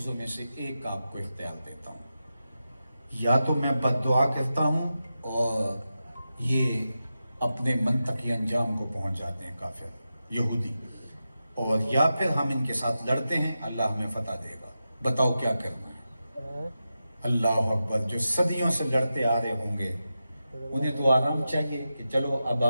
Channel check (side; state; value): both; inverted; correlation -0.91